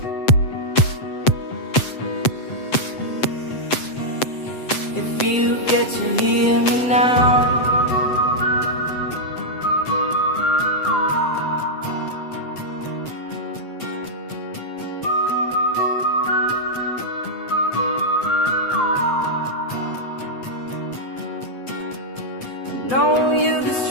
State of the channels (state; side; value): late; right; 7.8 ms